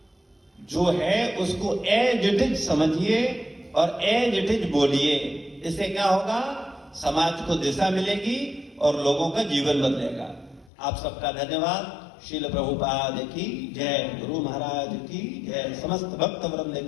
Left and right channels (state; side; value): drops out; right; at 10.7 s